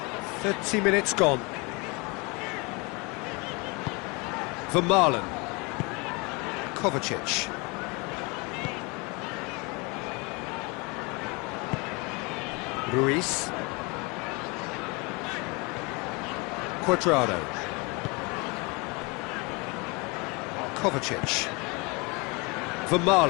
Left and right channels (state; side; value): quieter; right; 28.6 dB